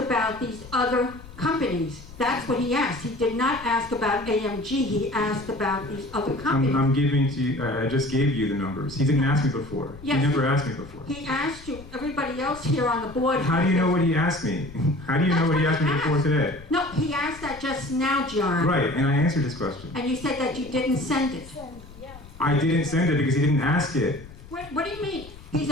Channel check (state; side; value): noise; left; rumble, 18 dB below the sound